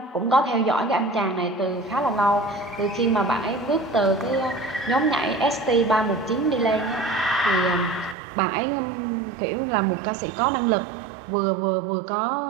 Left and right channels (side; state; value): left; drops out; at 8.2 s